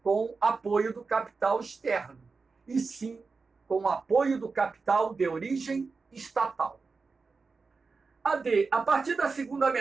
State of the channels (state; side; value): quieter; left; 4.4 dB